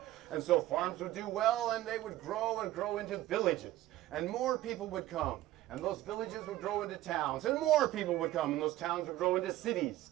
And so farms would do well, and they would grow and grow into villages. And more people would come. And those villages would grow into towns, and more people would come, and those towns would grow into cities.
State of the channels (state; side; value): quieter; left; 15.3 dB